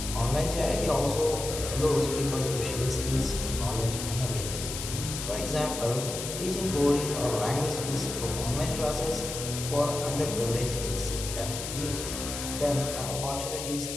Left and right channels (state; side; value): noise; left; hiss, 6 dB below the sound